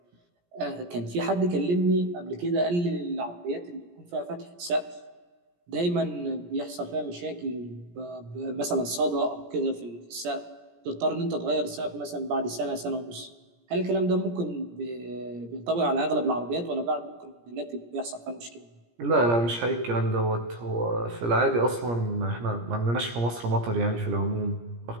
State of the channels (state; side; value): late; left; 17 ms